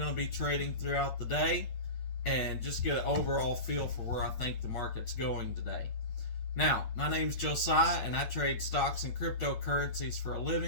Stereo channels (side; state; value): right; late; 8.9 ms